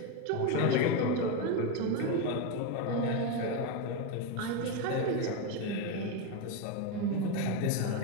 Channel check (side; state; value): both; different; correlation 0.04